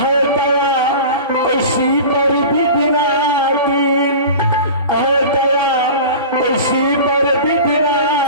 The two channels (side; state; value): both; inverted; correlation -0.35